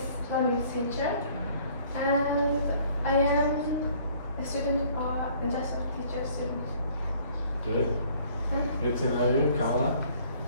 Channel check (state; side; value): inverted; both; correlation -0.57